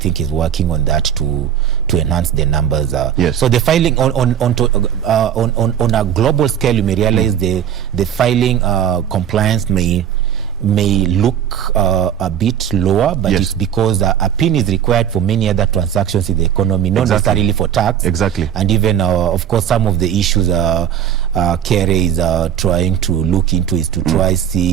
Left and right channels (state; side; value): quieter; left; 9.4 dB